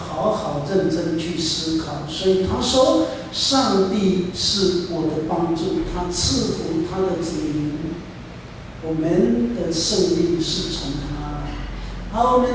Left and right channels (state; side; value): identical; both; correlation 1.00